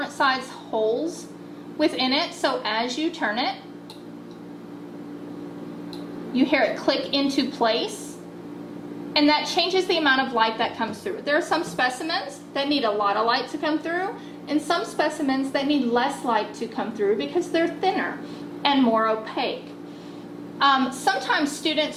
size holes within it, so as you turn it, you hear it click into place, and that changes the amount of light that comes through. There are some specimens that need a lot of light to come through, and some specimens that need less light to come through because they're thinner and more opaque. Sometimes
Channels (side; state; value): both; identical; correlation 1.00